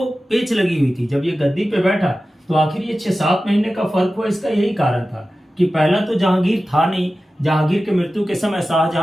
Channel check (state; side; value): normal; both; correlation 0.95